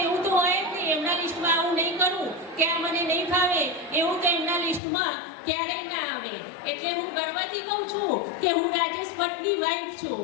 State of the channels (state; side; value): drops out; right; at 4.8 s